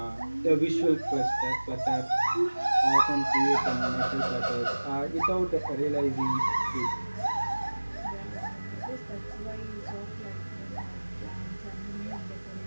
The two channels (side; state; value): both; inverted; correlation -1.00